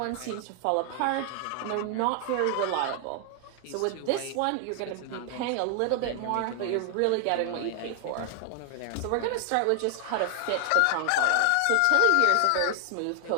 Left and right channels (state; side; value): different; both; correlation 0.00